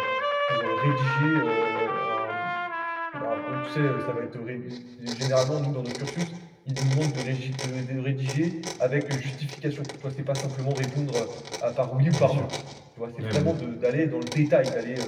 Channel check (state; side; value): identical; both; correlation 1.00